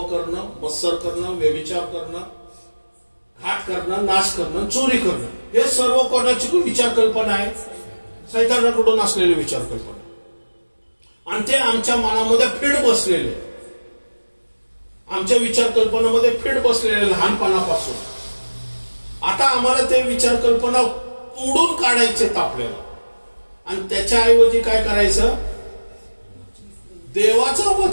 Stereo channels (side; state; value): both; inverted; correlation -1.00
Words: करणं, मत्सर करणं, व्यभिचार करणं, घात करणं, नाश करणं, चोरी करणं, हे सर्व कोणाची विचार कल्पना आहे, सैतानाकडून असलेले विचार कल्पना. आणि ते आमच्या मनामध्ये फीड बसलेले, आमच्या विचार कल्पनामध्ये फीड बसलेले लहानपणापासून. आता आम्हाला ते विचार कल्पना तोडून काढायचे आपल्याला. आणि त्याच्याऐवजी काय करायचं, देवाचं